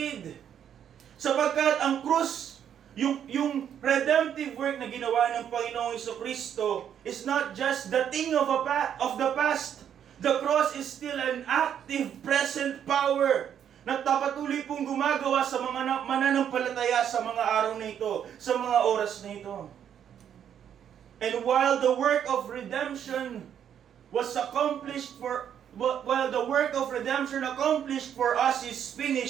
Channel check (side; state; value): left; quieter; 9.1 dB